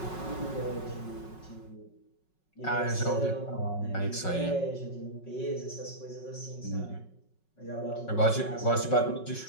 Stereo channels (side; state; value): right; late; 5.4 ms